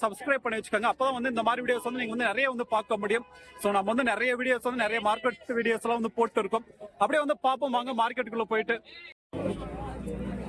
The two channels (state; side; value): identical; both; correlation 1.00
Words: சப்ஸ்கிரைப் பண்ணி வச்சுக்கோங்க. அப்பதான் வந்து இந்த மாதிரி வீடியோஸ் வந்து நீங்க வந்து நிறைய வந்து பார்க்க முடியும். சோ நம்ம வந்து நிறைய வீடியோஸ் வந்து நிறைய மார்க்கெட் வீடியோஸ் எல்லாம் வந்து போட்டு இருக்கோம். அப்படியே வந்து பார்ப்போம் வாங்க மார்க்கெட்டுக்குள்ள போயிட்டு.